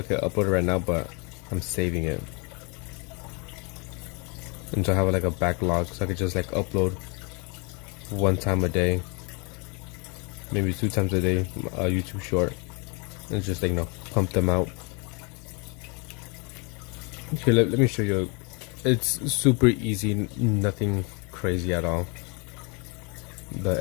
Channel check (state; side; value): quieter; right; 31.7 dB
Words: could upload it right now, but I'm saving it. And so I have like a backlog, so I could just like upload one time a day, maybe 2 times a day, a YouTube short, and just like, pump them out. Okay, let me show you. It's super easy, nothing crazy at all.